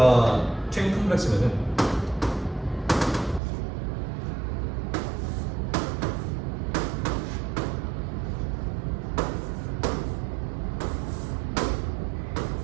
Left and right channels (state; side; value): drops out; left; at 3.4 s